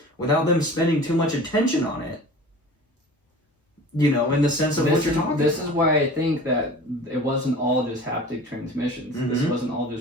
without them spending too much attention on it. You know, in the sense of what you're talking This about. is why I think that it wasn't all just haptic transmissions. This Mhm. wasn't all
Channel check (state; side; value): normal; both; correlation 0.40